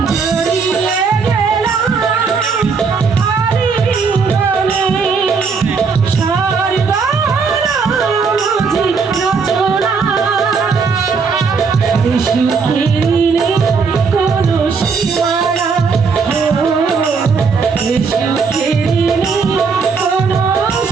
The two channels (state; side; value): quieter; left; 5.2 dB